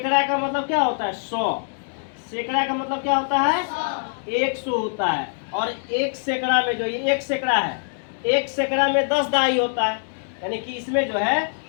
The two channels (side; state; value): right; silent; digital silence